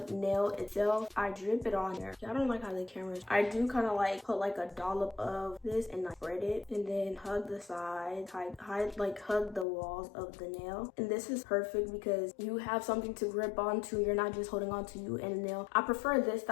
nail itself, I drip it on there. I don't like how the camera's. I do kind of like put like a dollop of this and like spread it, and then hug the sides, hug the walls of the nail. And this is perfect because you have something to grip onto. You're not just holding onto you and the nail. I prefer this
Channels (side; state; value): right; drops out; at 9.7 s